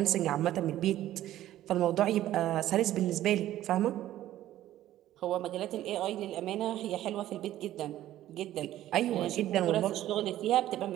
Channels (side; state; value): left; quieter; 13.5 dB